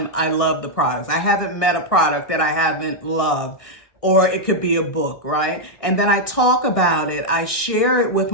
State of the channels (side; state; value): right; late; 1.6 ms